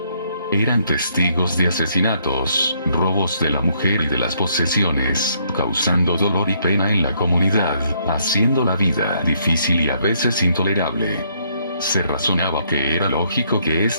Eran testigos de asesinatos, robos de la mujer y de las posesiones, causando dolor y pena en la comunidad, haciendo la vida difícil y a veces intolerable. Se razonaba que era lógico que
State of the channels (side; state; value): both; inverted; correlation -0.70